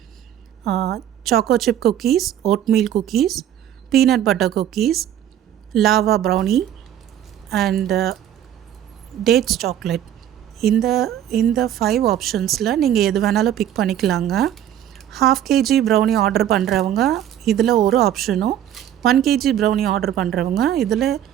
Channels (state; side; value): quieter; left; 10.9 dB